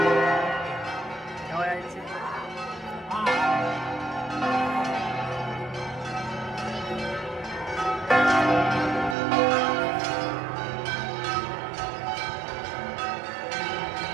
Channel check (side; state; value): left; drops out; at 9.2 s